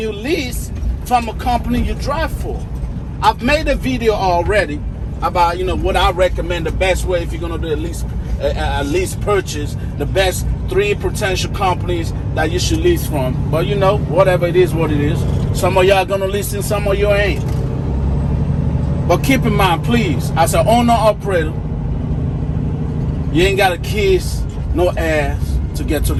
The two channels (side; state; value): both; identical; correlation 1.00